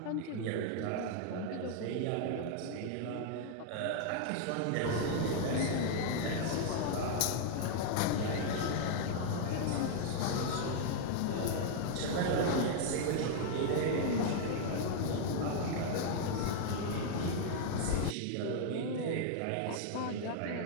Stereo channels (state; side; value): different; both; correlation 0.00